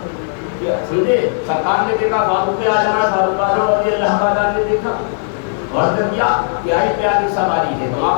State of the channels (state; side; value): silent; right; 69 dB below the other